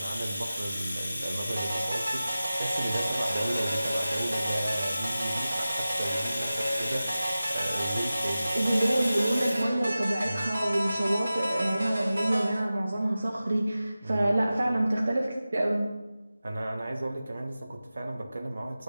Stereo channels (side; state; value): both; inverted; correlation -0.95